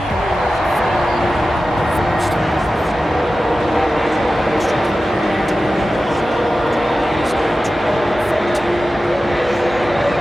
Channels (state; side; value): normal; both; correlation 0.94